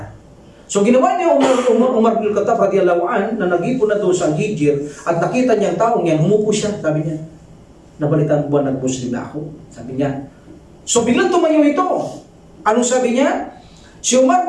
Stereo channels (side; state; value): both; identical; correlation 1.00